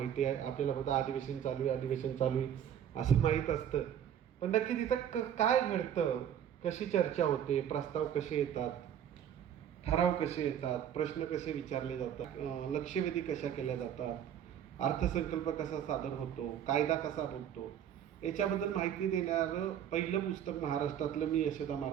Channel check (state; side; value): quieter; left; 9.7 dB